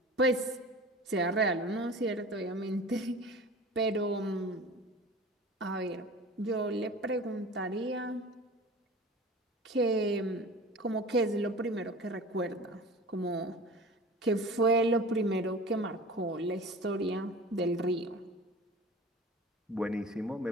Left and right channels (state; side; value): normal; both; correlation 0.39